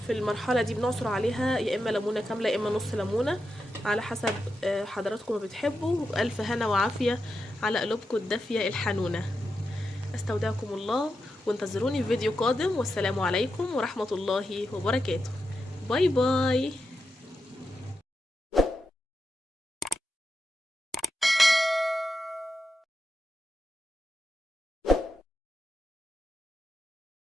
في المرحله دي بنعصر عليها يا اما ليمونه كامله يا اما نص ليمونه على حسب حضراتكم ما بتحبوا. والف هنا وعافيه على قلوبكم الدافيه الحنونه. استودعكم الله وانتظروني في فيديو قادم، والسلام عليكم ورحمه الله وبركاته. باي باي.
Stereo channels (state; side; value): normal; both; correlation 0.88